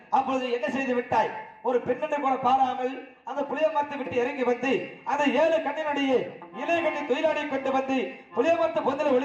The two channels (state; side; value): identical; both; correlation 1.00